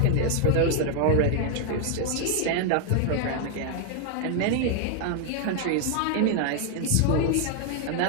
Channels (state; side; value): different; both; correlation 0.00